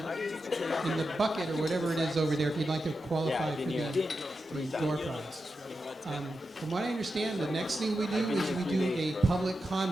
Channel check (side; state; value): both; normal; correlation 0.89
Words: bucket or whatever it is over there if you'd like to qualify for the door prize. From what I understand, the next thing we do is we do a public